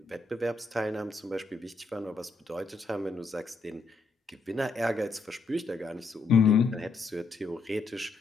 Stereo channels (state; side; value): quieter; right; 3.8 dB